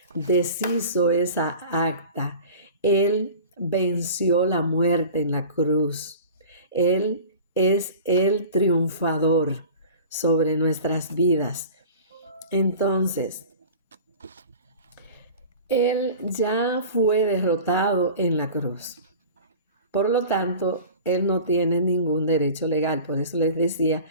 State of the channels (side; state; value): both; inverted; correlation -0.39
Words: deshizo esa acta. Él venció la muerte en la cruz. Él es el triunfador sobre nuestras vidas. Entonces, Él ya fue derrotado en la cruz. Por lo tanto, Él no tiene ningún derecho legal. Por eso les decía